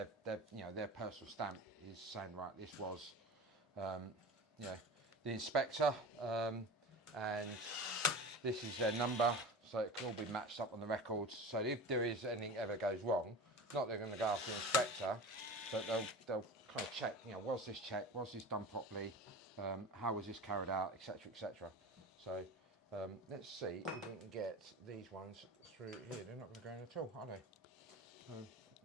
their personal stamp is saying, right, this was the inspector, and this is their number, so it can all be matched up on the records. So if there is anything ever goes wrong, not they're going to go after the inspector, but they'll kind of check, you know, was this checked, was this done properly, how was this carried out, etc., etc. So let's see if we can get these ones through here. They're not going to go in at all, are they?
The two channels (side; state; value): both; normal; correlation 0.32